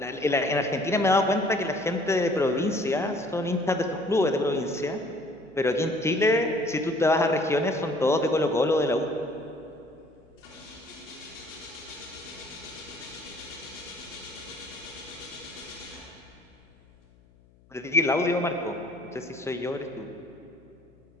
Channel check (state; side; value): noise; left; hum, 29 dB below the sound